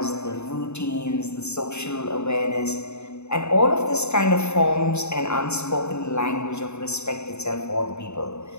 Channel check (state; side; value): late; right; 0.81 ms